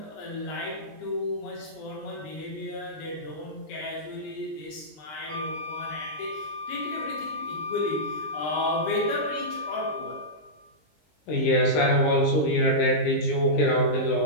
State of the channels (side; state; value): right; late; 20 ms